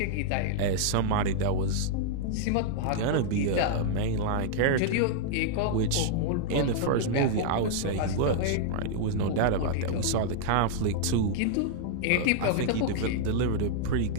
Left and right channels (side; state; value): both; different; correlation -0.01